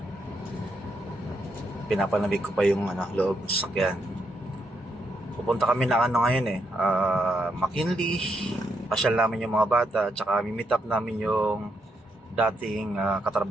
pinapanamig ko pa yung loob ng sasakyan. Pupunta kami na ngayon McKinley. Pasyal namin yung mga bata at saka meet up namin yung dating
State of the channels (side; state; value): both; normal; correlation 0.79